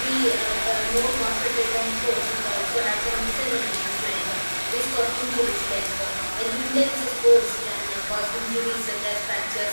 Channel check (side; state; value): both; inverted; correlation -1.00